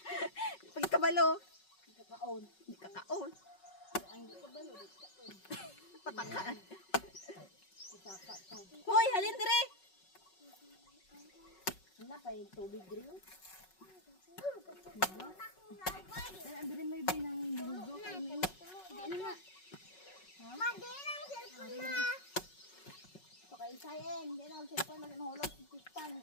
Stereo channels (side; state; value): right; late; 5.4 ms